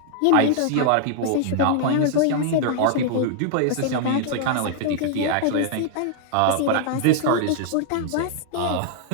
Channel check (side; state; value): both; different; correlation 0.00